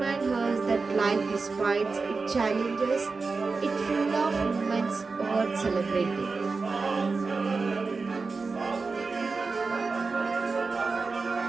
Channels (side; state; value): left; quieter; 4.2 dB